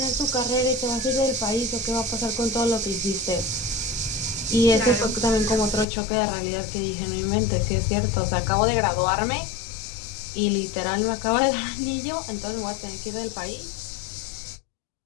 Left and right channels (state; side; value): drops out; right; at 5.9 s